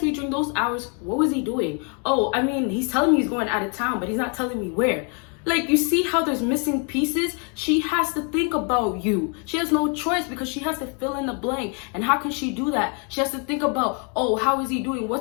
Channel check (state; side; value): quieter; right; 37.5 dB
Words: me during those hours. What was he doing? Oh, I mean, he's telling me he's going out of town, but he's not telling me where. Like, you see how there's missing pieces? She has to think about you. She has no choice because she has to fill in the blank. And how can she do that? She has to think about, oh, how is he doing?